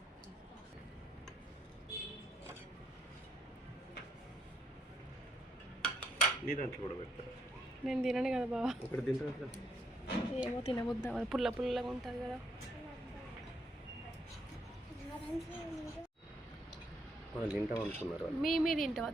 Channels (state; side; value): normal; both; correlation 0.74